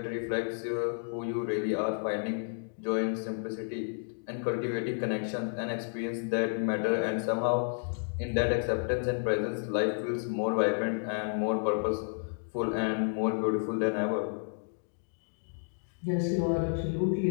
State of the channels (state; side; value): silent; right; digital silence